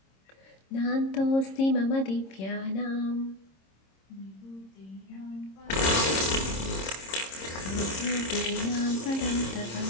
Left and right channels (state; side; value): late; right; 26 ms